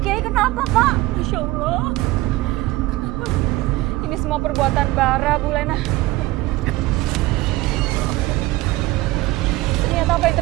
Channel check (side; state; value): left; quieter; 18.6 dB